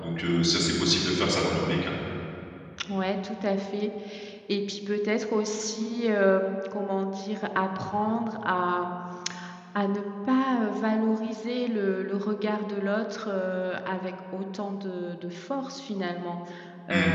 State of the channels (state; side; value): identical; both; correlation 1.00